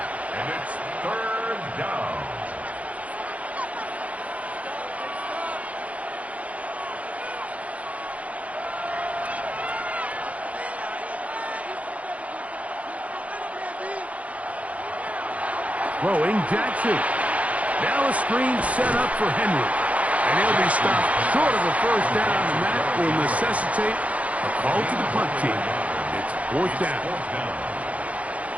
and it's third down. Throwing Jackson. Now a screen set up for Henry. And he'll be stopped short of a first down, and that will necessitate a call to the punt team. It's fourth down.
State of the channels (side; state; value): left; late; 0.066 ms